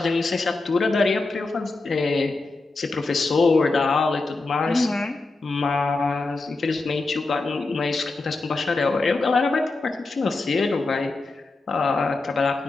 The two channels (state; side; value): quieter; right; 3.5 dB